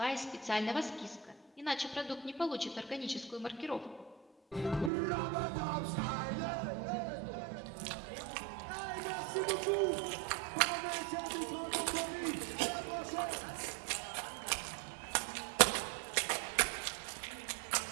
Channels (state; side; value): drops out; left; at 4.9 s